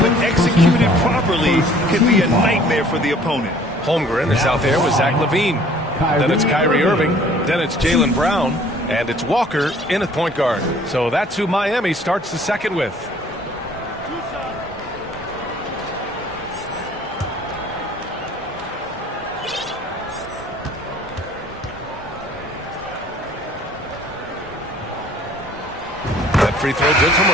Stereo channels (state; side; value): normal; both; correlation 0.55